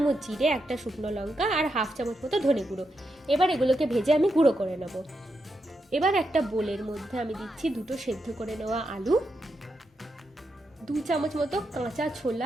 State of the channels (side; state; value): both; normal; correlation 0.84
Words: জিরে, 1টা শুকনো লঙ্কা আর হাফ চামচ মতো ধনে গুঁড়ো। এবার এগুলোকে ভেজে আমি গুঁড়ো করে নেবো। এবার একটা বোলের মধ্যে আমি দিচ্ছি 2 সেদ্ধ করে নেওয়া আলু, 2 চামচ মতো কাঁচা